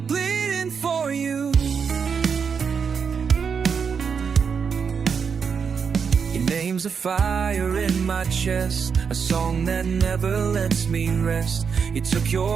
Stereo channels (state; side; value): quieter; left; 6.2 dB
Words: bleeding for you. Your name's a fire in my chest, a song that never lets me rest. You took